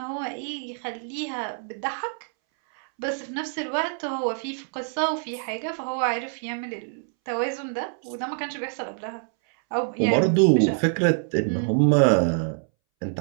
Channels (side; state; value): left; silent; 61 dB below the other